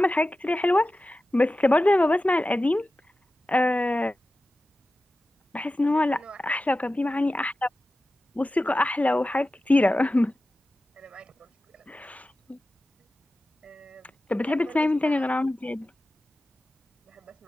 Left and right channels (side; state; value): both; normal; correlation 0.94